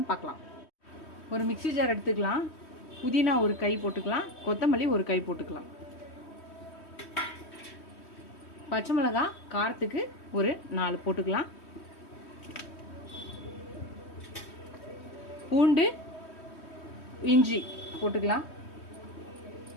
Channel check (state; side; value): late; right; 3.1 ms